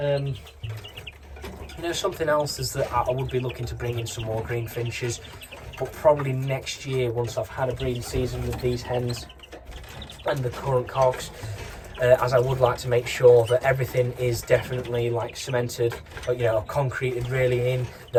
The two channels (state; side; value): identical; both; correlation 1.00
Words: You know, something else is that I would be looking to bring in some more Greenfinches, but probably next year, once I've had a breeding season with these hens and the current cocks. as I would like to make sure that everything is definitely like cemented, or, you know, concreted really in,